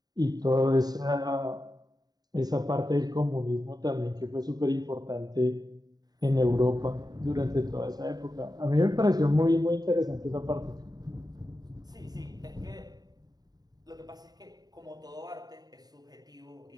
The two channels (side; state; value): left; late; 0.19 ms